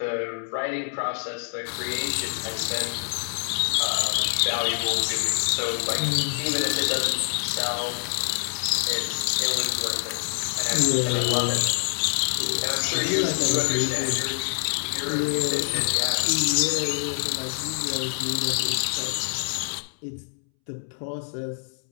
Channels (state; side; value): silent; right; 61 dB below the other